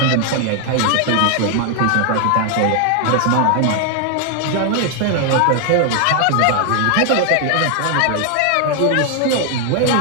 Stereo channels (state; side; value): different; both; correlation 0.00